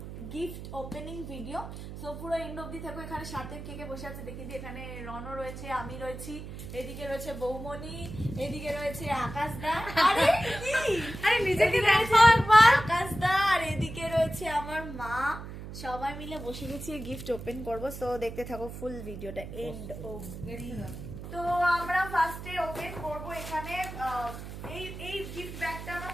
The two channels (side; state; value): right; noise; hum, 10 dB below the sound